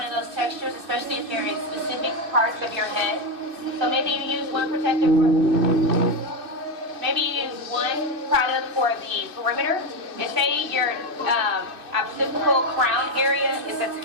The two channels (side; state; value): left; late; 2.6 ms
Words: of those textures, especially if they're in specific parts of your head. So maybe you use one protective Maybe you use one product for the perimeter. And say your occipital crown area is a